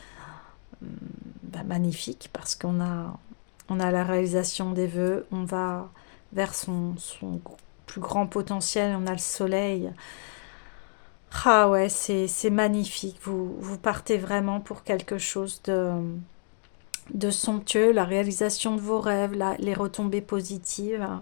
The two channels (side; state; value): right; silent; digital silence